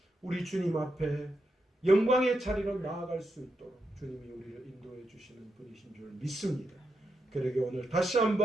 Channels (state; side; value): normal; both; correlation 0.84